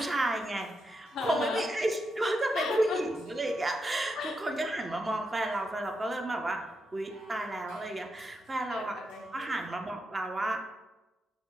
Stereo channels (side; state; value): both; normal; correlation 0.84